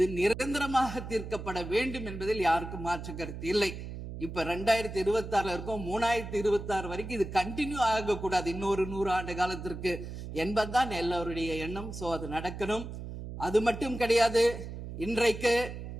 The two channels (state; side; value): noise; right; hum, 9 dB below the sound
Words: நிரந்தரமாக தீர்க்கப்பட வேண்டும் என்பதில் யாருக்கும் மாற்று கருத்து இல்லை. இப்ப 2026 இருக்கும், 2026 வரைக்கும் இது கண்டினியூ ஆகக்கூடாது, இன்னொரு 100 ஆண்டு காலத்திற்கு என்பதுதான் எல்லோருடைய எண்ணம். சோ அது நடக்கணும். அது மட்டும் கிடையாது, இன்றைக்கு